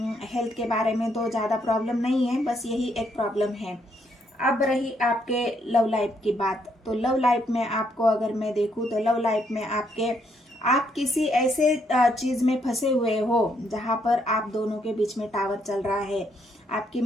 हेल्थ के बारे में तो ज़्यादा प्रॉब्लम नहीं है, बस यही एक प्रॉब्लम है। अब रही आपके लव लाइफ की बात, तो लव लाइफ में आपको अगर मैं देखूँ तो लव लाइफ में आप किसी ऐसे चीज़ में फंसे हुए हो जहाँ पर आप दोनों के बीच में टावर चल रहा है। आपकी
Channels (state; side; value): normal; both; correlation 0.73